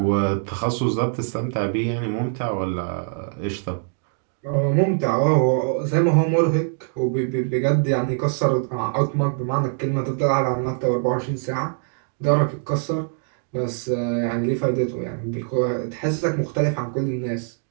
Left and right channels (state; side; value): silent; left; 59 dB below the other